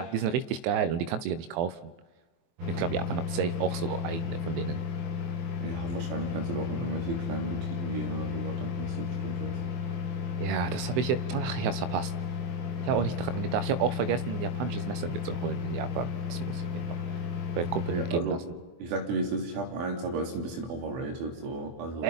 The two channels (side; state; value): left; late; 24 ms